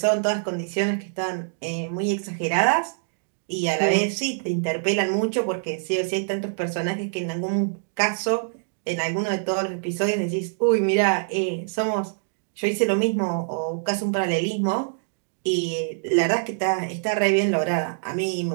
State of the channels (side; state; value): left; silent; digital silence